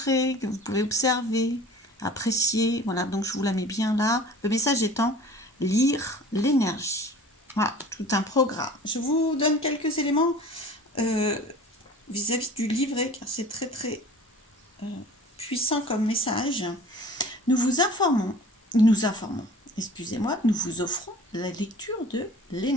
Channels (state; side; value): normal; both; correlation 0.44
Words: que vous pouvez observer, apprécier. Voilà, donc je vous la mets bien là. Le message étant lire l'énergie. Voilà, tout un programme. Je vous donne quelques éléments euh, vis-à-vis du livret, car c'est très très euh, puissant comme message. Nous vous informons, nous informons, excusez-moi, nous vous offrons la lecture de